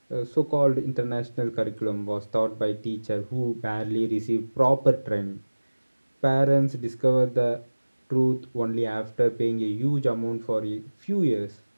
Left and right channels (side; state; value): both; inverted; correlation -1.00